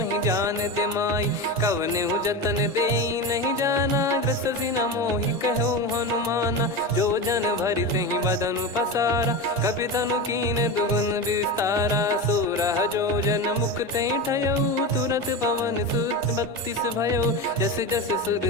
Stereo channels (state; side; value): normal; both; correlation 0.22